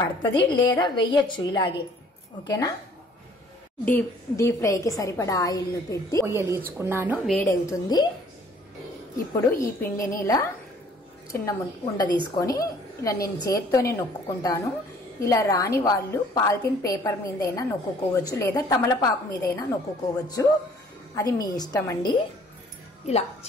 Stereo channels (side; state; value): both; normal; correlation 0.56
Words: పడుతుంది, లేదా వెయ్యొచ్చు ఇలాగే. ఓకేనా? డీప్ ఫ్రైకి సరిపడా ఆయిల్ను పెట్టి పొయ్యలీచుకున్నాను, వేడవుతుంది. ఇప్పుడు ఈ పిండిని ఇలా చిన్న ఉండ తీసుకొని ఇలా నేను చేత్తోనే నొక్కుకుంటాను. ఇలా రాని వాళ్ళు పాలిథిన్ పేపర్ మీదైనా నొక్కుకోవచ్చు, లేదా తమలపాకు మీదైనా నొక్కుకోవచ్చు, అది మీ ఇష్టం అండి. ఇలా